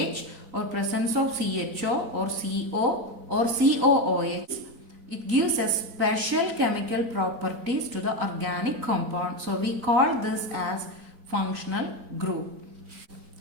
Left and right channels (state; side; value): late; left; 4.0 ms